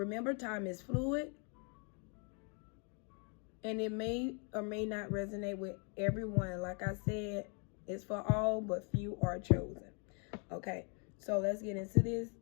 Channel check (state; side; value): quieter; right; 38.2 dB